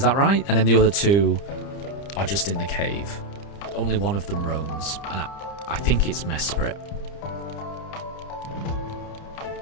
that right? And then the other two are just in the cave. Only one of them roams, and I think it's Mesprit.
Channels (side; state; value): right; late; 30 ms